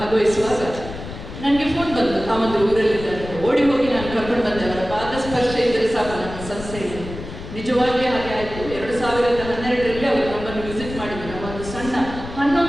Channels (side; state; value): left; noise; rumble, 11 dB below the sound